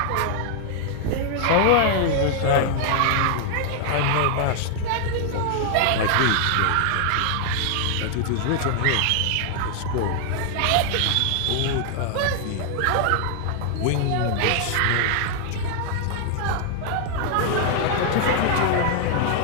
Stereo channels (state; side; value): different; both; correlation 0.00